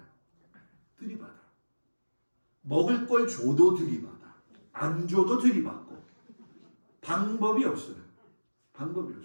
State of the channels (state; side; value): inverted; both; correlation -1.00